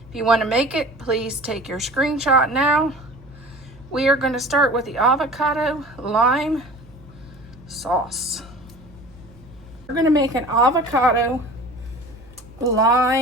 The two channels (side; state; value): right; noise; hum, 25 dB below the sound